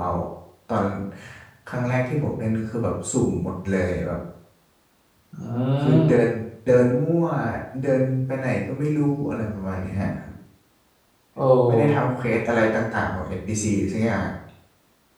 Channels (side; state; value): both; identical; correlation 1.00